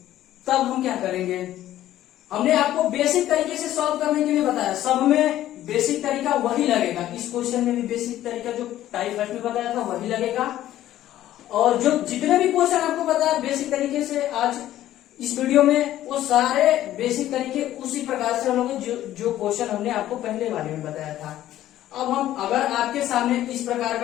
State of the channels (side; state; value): right; quieter; 13.3 dB